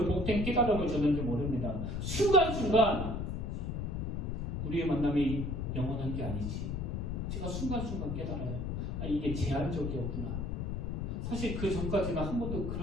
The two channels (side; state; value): left; noise; rumble, 2 dB below the sound